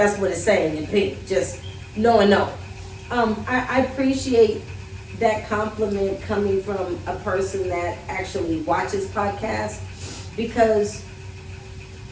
what it's saying in pink. Just no and no. I appreciate that compliment coming from a person that actually watches podcasts, because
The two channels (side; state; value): both; identical; correlation 1.00